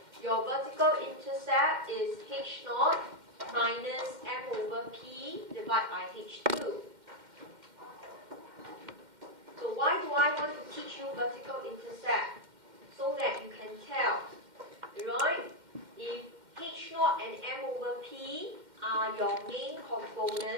your vertical intercept is H0 minus M over P divided by H2. So why do I want to teach you vertical intercept? So that you can tell, right? If H0 and M over P are your main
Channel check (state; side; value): late; left; 2.1 ms